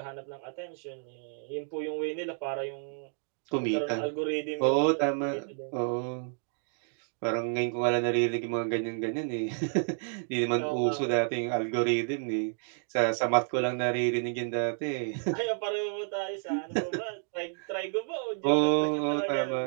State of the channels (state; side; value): silent; left; 57 dB below the other